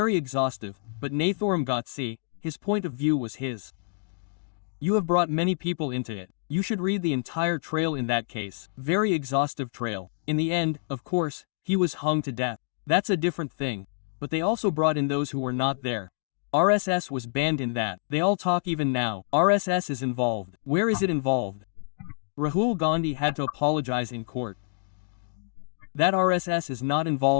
exhaustive, but Nathuram Gowd, his point of view was his. You have brought many people into it. You should read the entire trail in that case. Very exhaustive trail. In the end, of course, he was hung to death. That's a different thing. But they also brought in those who were not there. RSS was banned in that. They all talk even now. RSS is involved. Where is it involved? Rahul Gandhi had to apologize in court. That RSS is not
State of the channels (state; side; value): silent; right; digital silence